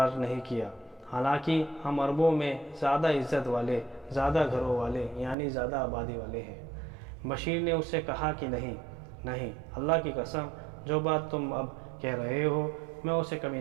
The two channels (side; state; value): left; drops out; at 5.4 s